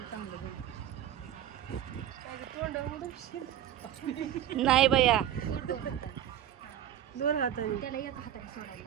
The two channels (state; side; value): quieter; left; 11.1 dB